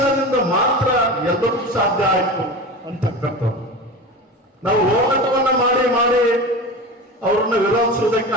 ಮಾತ್ರ ಎಲ್ಲರೂ ಸಾಧ್ಯ ಆಯ್ತು ಅಂತಕ್ಕಂಥದ್ದು. ನಾವು ಹೋರಾಟವನ್ನ ಮಾಡಿ ಅವರನ್ನ ವಿರೋಧಿಸುವುದಕ್ಕೆ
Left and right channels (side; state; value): both; normal; correlation 0.29